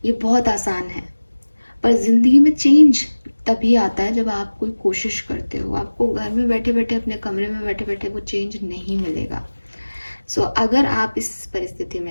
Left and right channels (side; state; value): both; inverted; correlation -1.00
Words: ये बहुत आसान है। पर जिंदगी में चेंज तभी आता है जब आप कोई कोशिश करते हो। आपको घर में बैठे बैठे, अपने कमरे में बैठे बैठे वो चेंज नहीं मिलेगा। सो अगर आप इस परिस्थिति